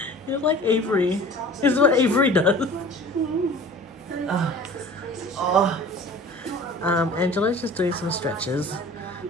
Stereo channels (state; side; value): normal; both; correlation 0.43